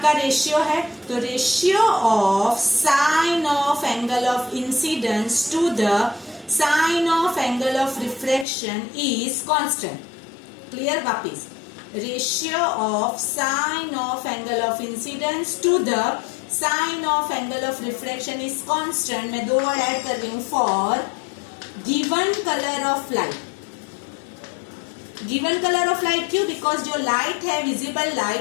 रेशियो है, तो ratio of sine of angle of incidence to the sine of angle of refraction is constant. Clear? वापिस, ratio of sine of angle of incidence to the sine of angle of refraction is constant. मैं 2 वर्ड ऐड कर रही हूं, for given colour of light. Given colour of light क्यों? बिकॉज जो लाइट है, visible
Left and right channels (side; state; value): right; drops out; at 8.5 s